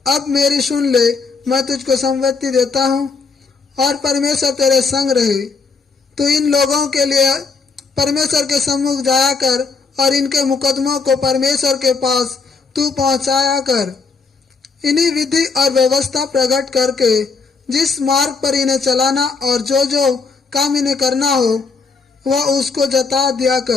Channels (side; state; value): right; quieter; 4.6 dB